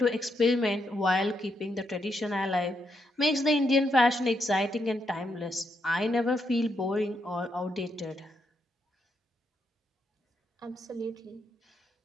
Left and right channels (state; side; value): normal; both; correlation 0.79